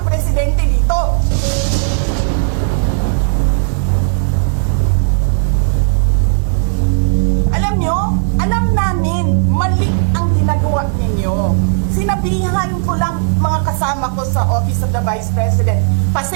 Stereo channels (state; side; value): silent; left; digital silence